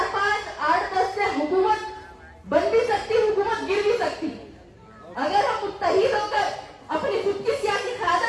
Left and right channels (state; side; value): identical; both; correlation 1.00